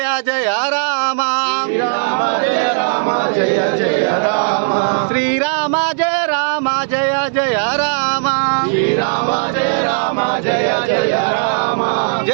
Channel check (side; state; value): left; silent; digital silence